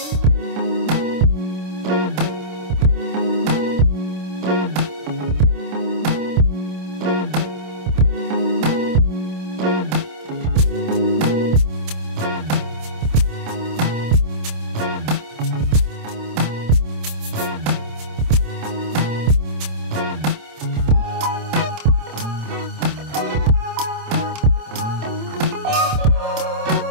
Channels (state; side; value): late; left; 27 ms